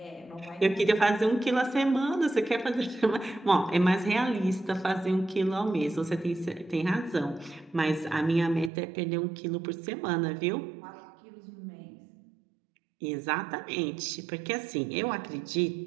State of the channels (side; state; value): left; drops out; at 8.7 s